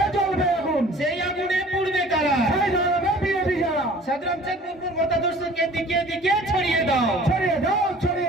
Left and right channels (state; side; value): normal; both; correlation 0.49